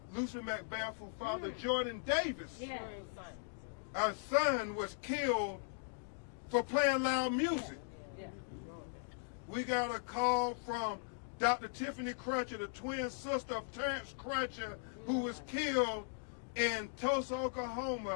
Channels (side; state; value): right; silent; digital silence